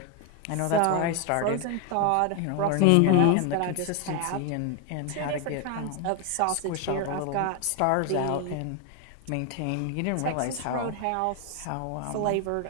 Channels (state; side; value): different; both; correlation 0.01